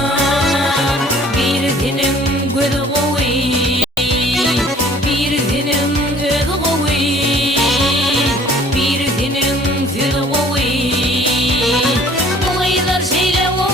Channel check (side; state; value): both; normal; correlation 0.53